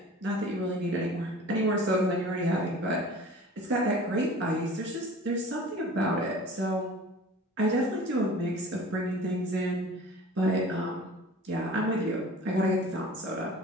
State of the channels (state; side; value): normal; both; correlation 0.43